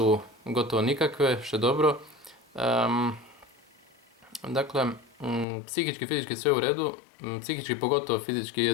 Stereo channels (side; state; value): right; drops out; at 5.5 s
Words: gotovo nikakve, što je dobro. Dakle, psihički, fizički sve u redu, psihički pogotovo, fizički